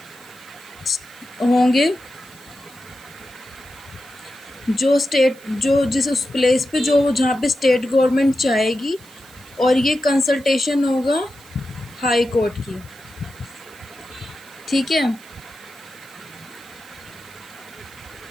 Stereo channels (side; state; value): right; noise; hiss, 24 dB below the sound